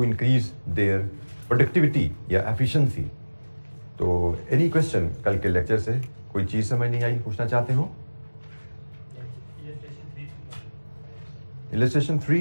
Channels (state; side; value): inverted; both; correlation -1.00